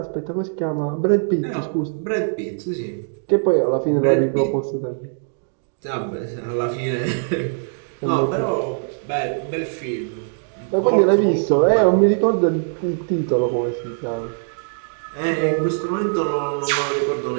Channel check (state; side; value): silent; left; digital silence